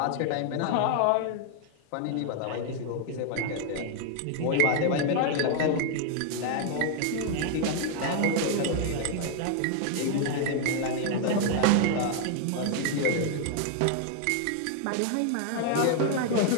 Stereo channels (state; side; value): different; both; correlation 0.00